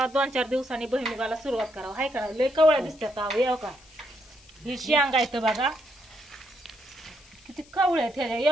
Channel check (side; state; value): left; noise; hiss, 25 dB below the sound